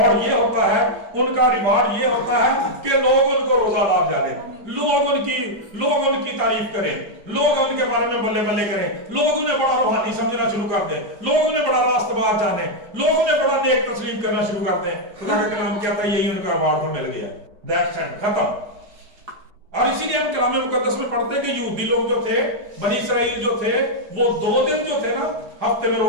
ये होता है, उनका रिवार्ड ये होता है कि लोग उनको रोजादार जाने, लोग उनकी तारीफ करें, लोग उनके बारे में बल्ले बल्ले करें, लोग उन्हें बड़ा रूहानी समझना शुरू कर दें, लोग उन्हें बड़ा रास्तबाज जाने, लोग उन्हें बड़ा नेक तस्लीम करना शुरू कर दें। खुदा का कलाम कहता है यही उनका रिवार्ड तो मिल गया, दैट्स इट, खत्म। और इसीलिए हम कलाम मुकद्दस में पढ़ते हैं कि यहूदी लोग जो थे, बनी इसराइल जो थे, वो 2 दिन जो थे ना हफ्ते में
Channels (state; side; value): late; left; 4.8 ms